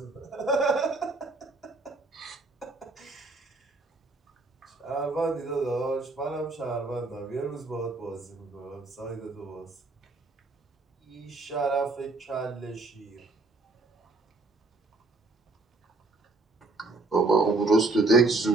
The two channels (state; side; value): quieter; left; 3.2 dB